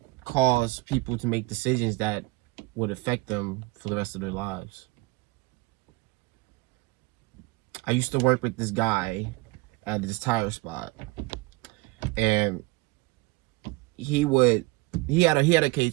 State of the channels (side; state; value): left; quieter; 22.1 dB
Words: cause people to make decisions that would affect them for the rest of their lives. I used to work with this guy at this tire spot, and he had a